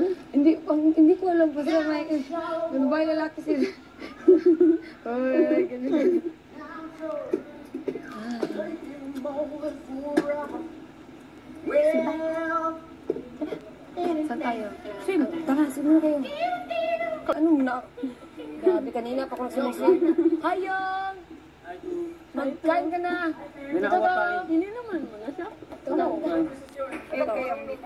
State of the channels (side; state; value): both; identical; correlation 1.00